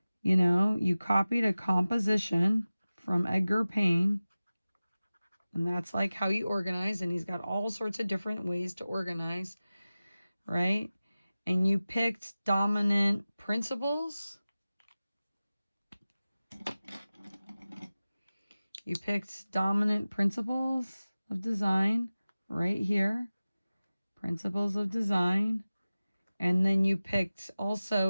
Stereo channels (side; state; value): both; inverted; correlation -0.96